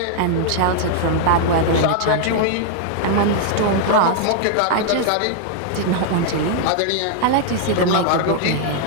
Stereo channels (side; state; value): both; different; correlation -0.01